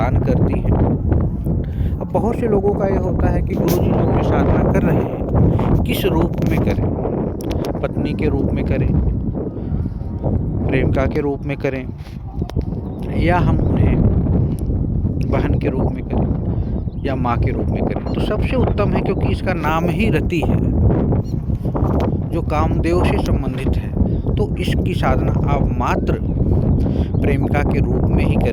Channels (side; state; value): both; identical; correlation 1.00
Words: करती है। अब बहुत से लोगों का ये होता है कि गुरु जी जो भी साधना कर रहे हैं किस रूप में करें, पत्नी के रूप में करें, प्रेमिका के रूप में करें, या हम उन्हें बहन के रूप में करें या माँ के रूप में करें। तो सबसे उत्तम है, क्योंकि इसका नाम ही रति है जो कामदेव से संबंधित है। तो इसकी साधना आप मात्र प्रेमिका के रूप में ही